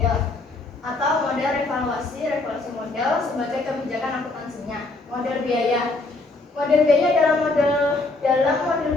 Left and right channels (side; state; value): right; quieter; 3.3 dB